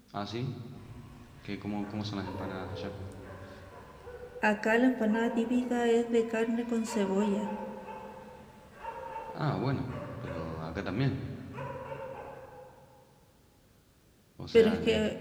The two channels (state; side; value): identical; both; correlation 1.00